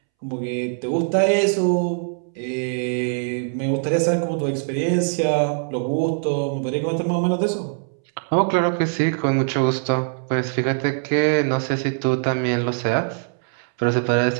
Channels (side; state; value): left; silent; 64 dB below the other